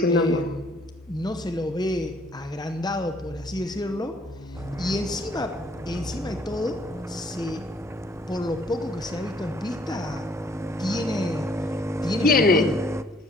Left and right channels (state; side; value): normal; both; correlation 0.62